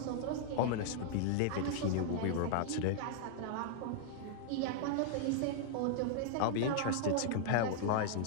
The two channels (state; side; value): different; both; correlation -0.01